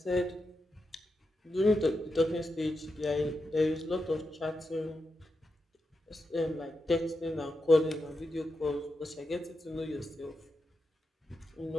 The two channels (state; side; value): normal; both; correlation 0.87